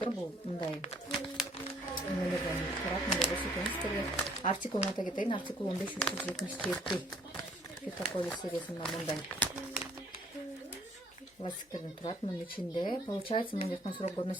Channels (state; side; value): normal; both; correlation 0.61